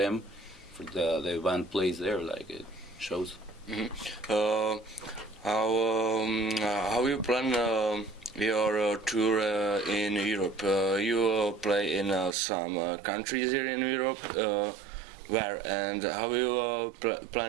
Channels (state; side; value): drops out; left; at 12.4 s